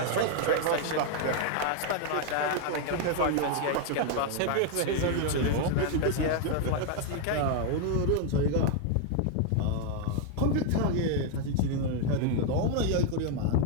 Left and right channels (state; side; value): different; both; correlation 0.00